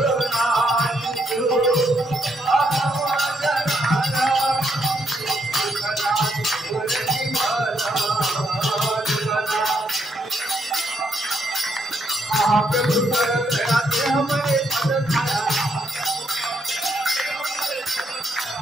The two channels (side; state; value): both; normal; correlation 0.76